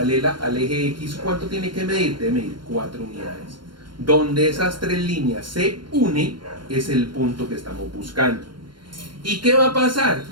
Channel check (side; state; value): left; late; 0.72 ms